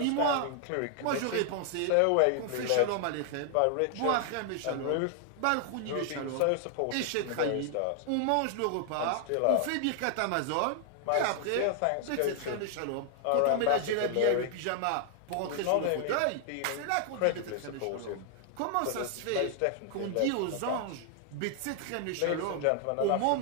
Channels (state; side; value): different; both; correlation 0.00